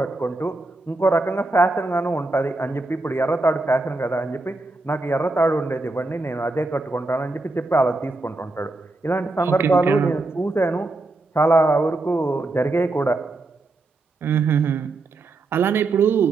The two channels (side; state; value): left; quieter; 3.1 dB